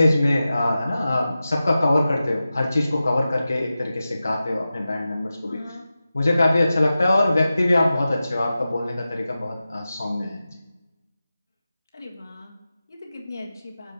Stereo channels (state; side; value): inverted; both; correlation -0.94